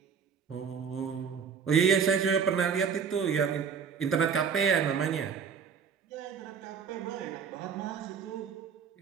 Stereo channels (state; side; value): quieter; left; 6.7 dB